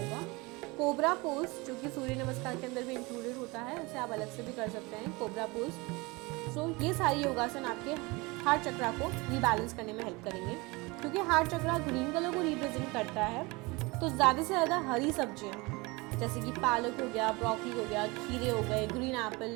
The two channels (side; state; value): left; quieter; 24.9 dB